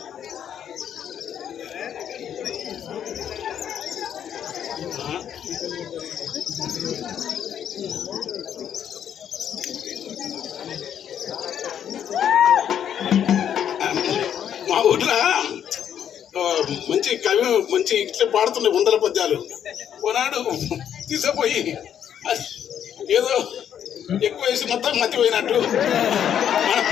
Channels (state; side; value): quieter; right; 9.3 dB